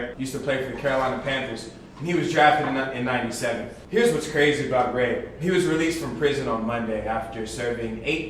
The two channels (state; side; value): identical; both; correlation 1.00